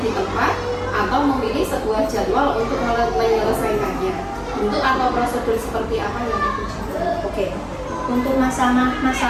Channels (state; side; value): identical; both; correlation 1.00